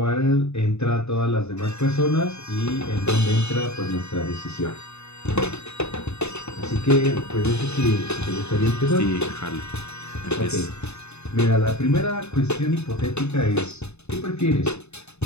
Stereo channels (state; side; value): late; right; 0.81 ms